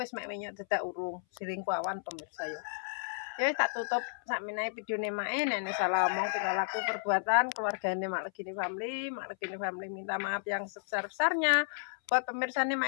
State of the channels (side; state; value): right; silent; 56 dB below the other